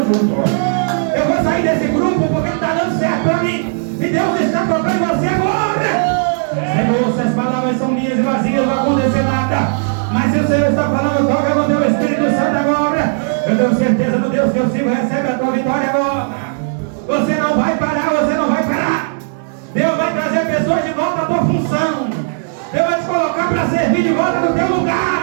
eu vou sair desse grupo porque não está dando certo para mim. E Deus está tocando você agora. Senhor, se as palavras são minhas e vazias, não vai acontecer nada. Mas se o Senhor está falando, toca com o teu Espírito Santo agora. Eu tenho certeza no Deus que eu sigo, recebe a tua vitória agora. Você não vai parar, você não vai parar. Deus vai trazer pessoas de volta à tua função. Deus vai te colocar para servir de volta no teu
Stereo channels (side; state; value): left; silent; digital silence